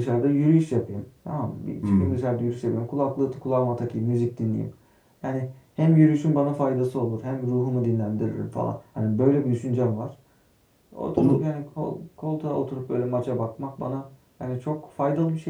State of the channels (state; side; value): identical; both; correlation 1.00